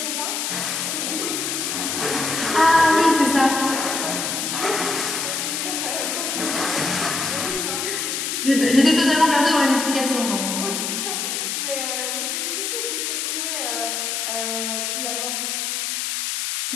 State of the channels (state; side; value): noise; left; hiss, 1 dB below the sound